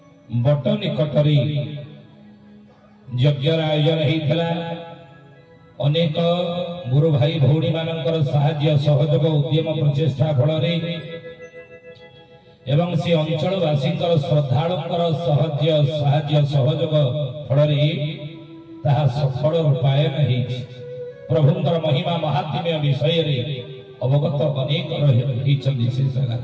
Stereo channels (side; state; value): both; identical; correlation 1.00